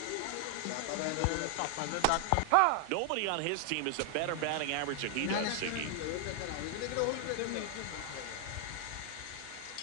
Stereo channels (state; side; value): different; both; correlation 0.00